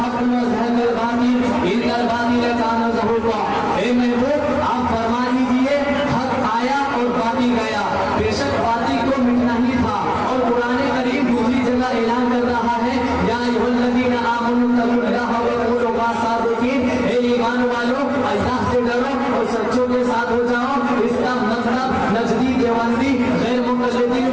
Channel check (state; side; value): identical; both; correlation 1.00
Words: व ज़हक़ल बातिल इन्नल बातिल काना ज़हूक़ा। हे महबूब, आप फरमा दीजिए हक आया और बातिल गया। बेशक बातिल को मिटना ही था। और कुरान करीम दूसरी जगह ऐलान कर रहा है, या अय्युहल्लज़ीना आमनू तक़ुल्लाह व कूनू माअस-सादिक़ीन। हे ईमान वालों, अल्लाह से डरो और सच्चों के साथ हो जाओ। इसका मतलब नजदी, देवबंदी, गैर मुक़ल्लिदीन,